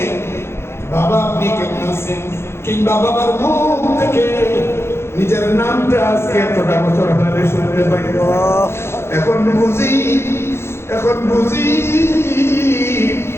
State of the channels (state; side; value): late; right; 0.12 ms